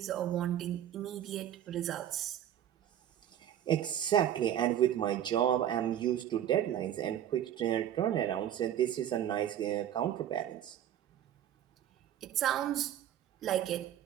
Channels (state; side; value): quieter; left; 10.8 dB